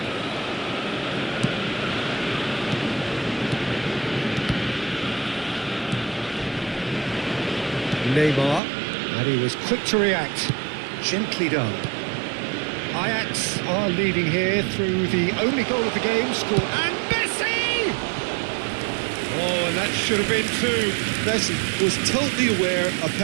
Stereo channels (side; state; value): left; drops out; at 8.6 s